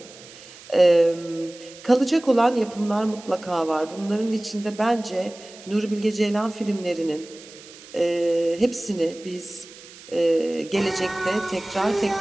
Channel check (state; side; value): noise; right; hiss, 19 dB below the sound